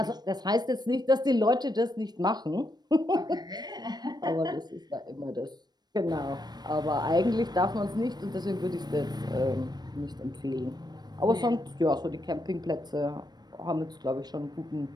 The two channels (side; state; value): left; late; 0.20 ms